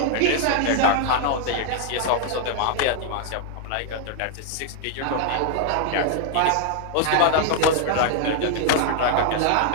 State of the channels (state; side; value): different; both; correlation 0.00